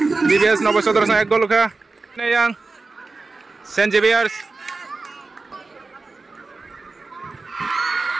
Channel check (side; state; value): left; quieter; 3.8 dB